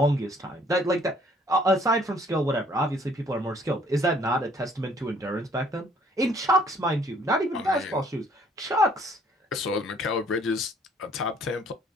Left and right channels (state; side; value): normal; both; correlation 0.60